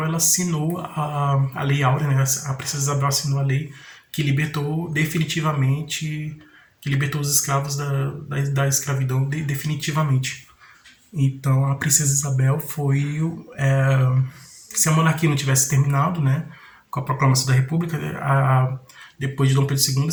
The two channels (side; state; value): both; identical; correlation 1.00